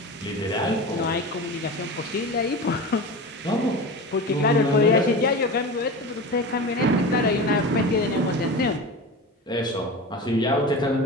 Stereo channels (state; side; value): normal; both; correlation 0.29